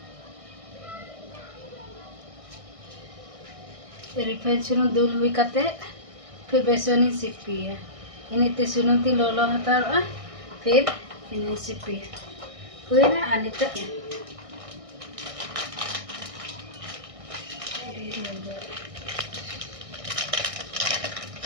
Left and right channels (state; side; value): late; left; 1.6 ms